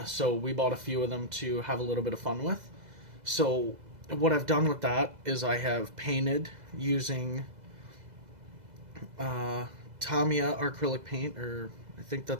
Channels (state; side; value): late; left; 2.0 ms